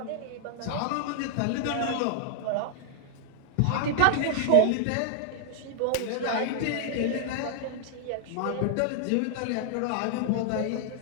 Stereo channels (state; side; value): different; both; correlation -0.01